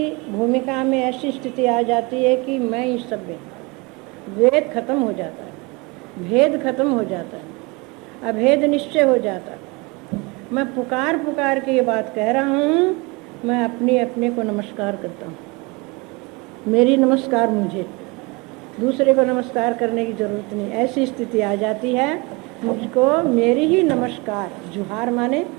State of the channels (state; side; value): quieter; left; 27.0 dB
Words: भूमिका में ऐसी स्थिति आ जाती है कि मैं ही सब में, वेद खत्म हो जाता है, भेद खत्म हो जाता है, अभेद निश्चय हो जाता है। मैं पुकार पुकार के ये बात कह रहा हूँ। मैं अपने को नमस्कार करता हूँ। मेरी नमस्कार मुझे, दूसरे को नमस्कार करने की जरूरत नहीं। ऐसी स्थिति आ जाती है मुझको मेरी ही नमस्कार। जुहार माने